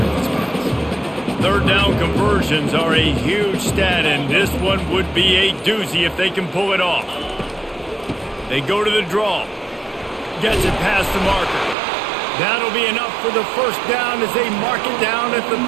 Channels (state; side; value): drops out; left; at 11.8 s